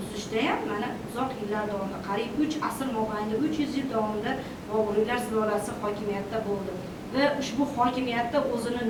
tuzishda ham mana uzoq yillar davomida, qariyb 3 asr mobaynida 300 yil davomida Boburiylar sulolasi hokimiyatda bo'ldi va ushbu hokimiyatda o'zini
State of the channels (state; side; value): identical; both; correlation 1.00